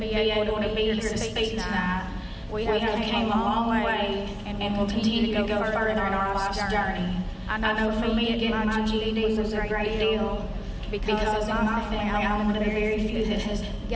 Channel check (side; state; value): both; identical; correlation 1.00